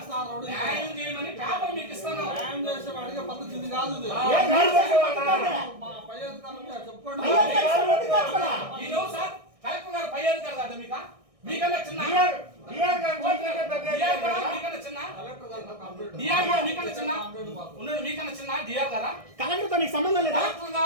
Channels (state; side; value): late; left; 1.6 ms